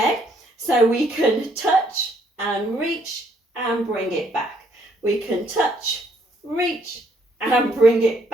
So we can touch and reach and bring it back. We can touch, reach and bring it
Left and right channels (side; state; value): both; normal; correlation 0.68